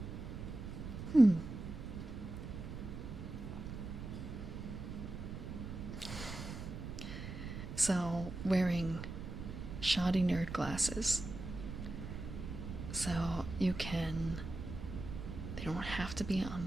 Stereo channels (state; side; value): noise; right; rumble, 7 dB below the sound